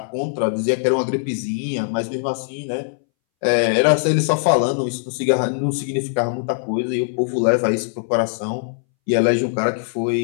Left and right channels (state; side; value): silent; right; 63 dB below the other